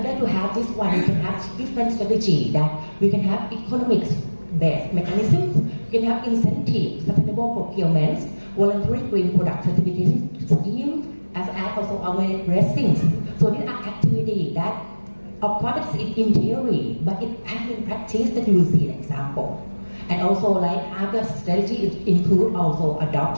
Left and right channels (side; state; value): both; inverted; correlation -1.00